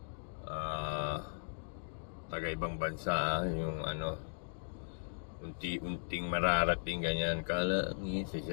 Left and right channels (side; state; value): right; silent; digital silence